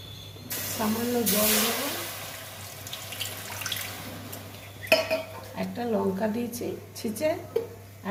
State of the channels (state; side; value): identical; both; correlation 1.00